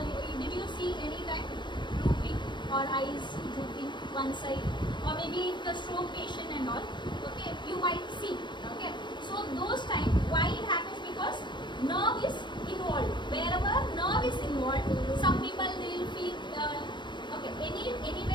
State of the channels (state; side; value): late; right; 0.22 ms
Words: Did you see any time drooping or eyes drooping one side, or maybe the stroke patient and all? Okay, you might see. Okay, so those time why it happens? Because nerve is involved. Wherever nerve is involved, some people they will feel